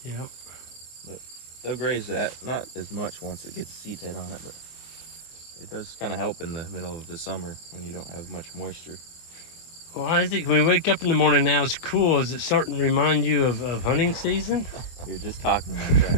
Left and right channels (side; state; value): right; late; 24 ms